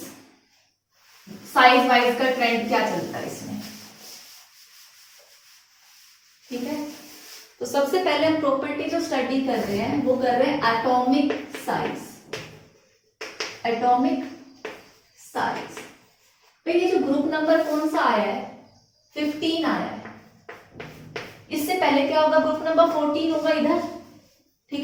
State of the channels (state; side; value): identical; both; correlation 1.00